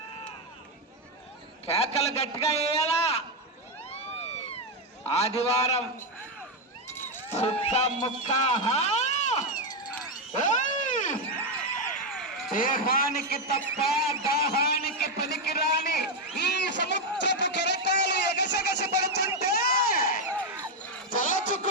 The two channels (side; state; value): both; normal; correlation 0.05